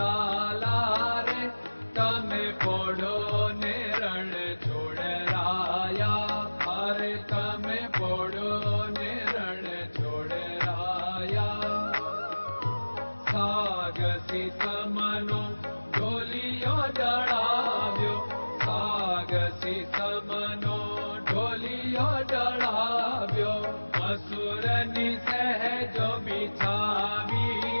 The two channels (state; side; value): inverted; both; correlation -1.00